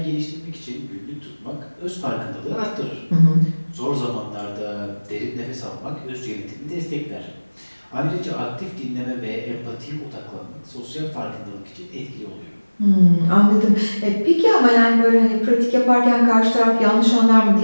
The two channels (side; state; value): both; inverted; correlation -1.00